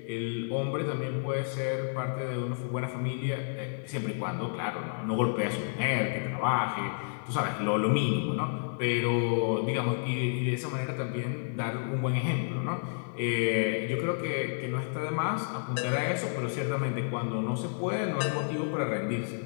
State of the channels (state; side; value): silent; right; 57 dB below the other